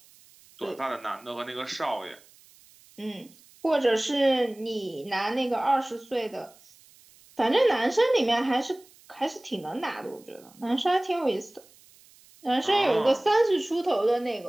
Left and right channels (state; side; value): noise; right; hiss, 27 dB below the sound